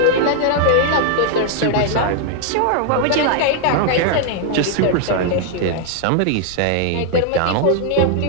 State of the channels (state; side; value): different; both; correlation 0.00